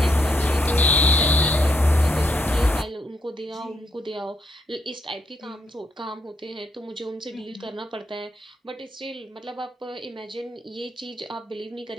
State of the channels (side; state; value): both; normal; correlation 0.78